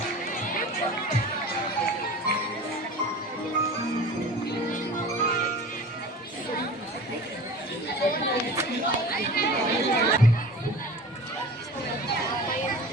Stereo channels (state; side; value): normal; both; correlation 0.38